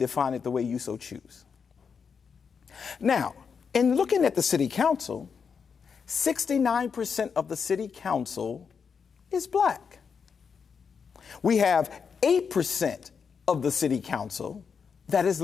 it the way you so choose. Now, in looking at the city council, 69% of the city council is black. We have 8% of the city council that is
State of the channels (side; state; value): right; quieter; 6.2 dB